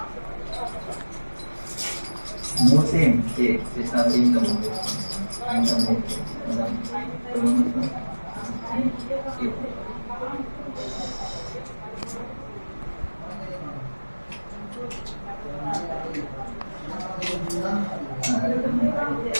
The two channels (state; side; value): inverted; both; correlation -1.00